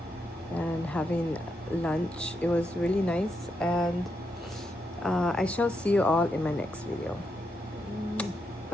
and having lunch. It was really nice, and I shall see you all in my next video.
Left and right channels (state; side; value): normal; both; correlation 0.82